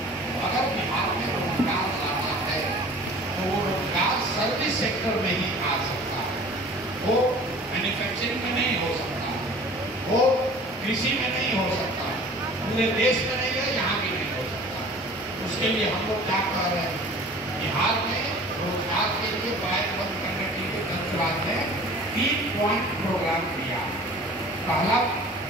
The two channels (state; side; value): normal; both; correlation 0.45